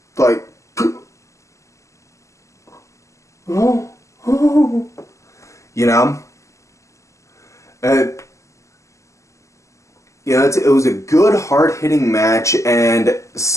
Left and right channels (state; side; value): late; right; 0.15 ms